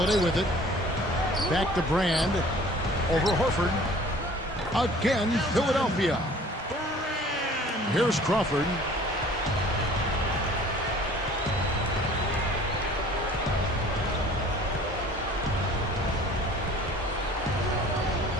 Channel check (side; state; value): both; normal; correlation 0.50